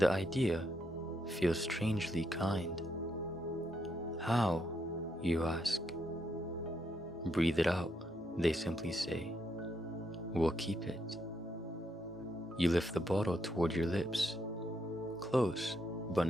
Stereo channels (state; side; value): normal; both; correlation 0.78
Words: idea feels strangely kind. How, you ask? Breathe it out, they simply say. We'll keep it. You lift the bottle toward your lips, close but